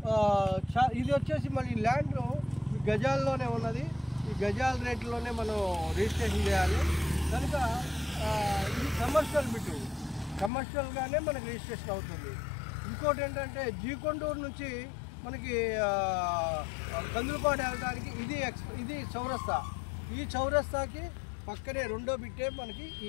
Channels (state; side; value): drops out; right; at 10.5 s